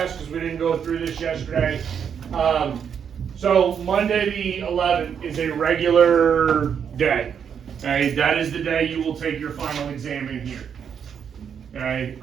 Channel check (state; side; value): quieter; left; 7.6 dB